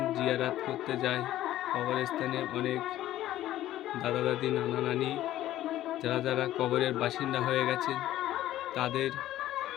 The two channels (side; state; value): right; quieter; 13.8 dB